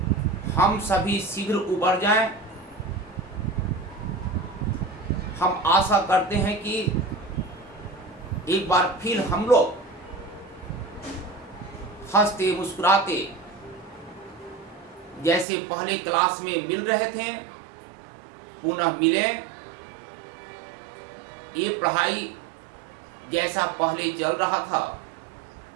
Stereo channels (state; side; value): drops out; left; at 15.5 s